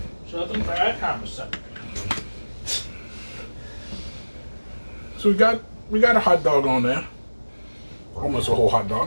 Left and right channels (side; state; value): both; inverted; correlation -1.00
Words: Something for that conversation. So we got a hot dog on there, almost a whole hot